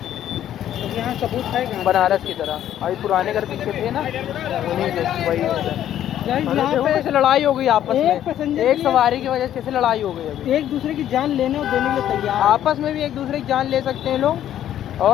तो यहाँ सबूत है बनारस की तरह। अभी पुराने घर पीछे थे ना, उन्हीं के वही यहाँ पे कैसे लड़ाई हो गई आपस एक में, पैसेंजर एक सवारी की वजह से कैसे लड़ाई हो गई अभी। एक दूसरे की जान लेने और देने के लिए तैयार। आपस में भी एक दूसरे की जान ले सकते हैं लोग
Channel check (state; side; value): quieter; right; 11.3 dB